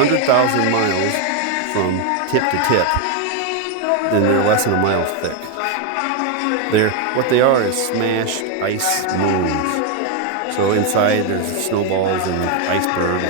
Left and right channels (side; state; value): both; different; correlation 0.01